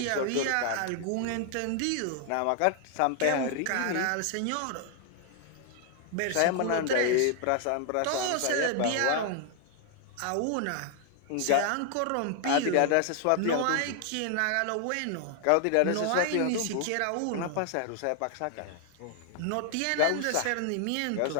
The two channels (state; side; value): different; both; correlation 0.00